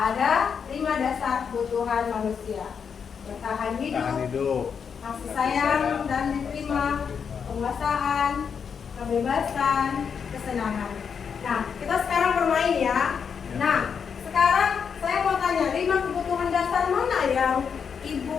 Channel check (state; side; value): quieter; right; 6.7 dB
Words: 5 dasar kebutuhan manusia. Bertahan hidup, kasih sayang dan diterima, penguasaan, kebebasan, kesenangan. Nah, kita sekarang bermain ya. Nah, sekarang saya mau tanya, 5 kebutuhan dasar mana yang